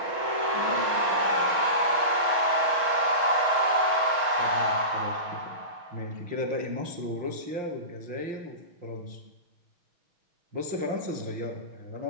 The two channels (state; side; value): late; left; 6.3 ms